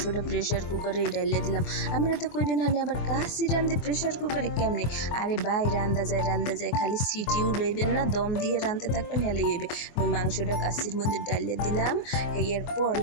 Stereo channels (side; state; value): right; late; 24 ms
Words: প্রেশার কুকারে ডালিয়ে দিলাম। আমরা তো কইবেন হানে আবার কাশি রান্ধি প্রেশার কুকারে কেমনে? আরে ভাই রান্ধা যায়, খালি সিটি উড়াইবেন না, দম দিয়ে রাঁধতে থাকবেন হেলেই হইবে। আমি মাংসটা কাশির মধ্যে ডালিয়ে দিলাম। এরপর